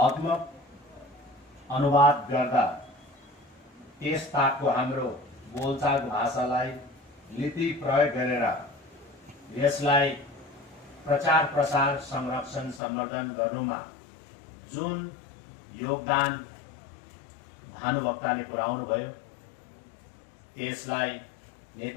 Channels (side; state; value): right; drops out; at 12.8 s